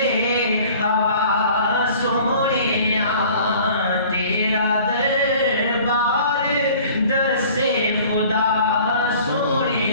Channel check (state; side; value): inverted; both; correlation -0.49